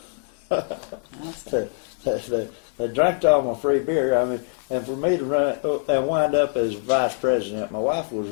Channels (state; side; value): silent; right; 63 dB below the other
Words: They drank all my free beer. I mean, and for me to run and wind up as vice president, my wife was